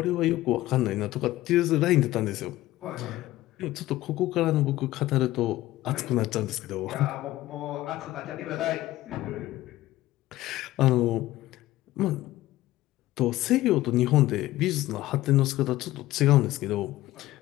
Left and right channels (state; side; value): quieter; right; 16.2 dB